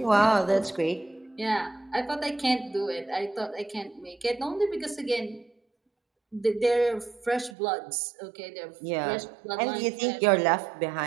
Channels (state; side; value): drops out; left; at 7.6 s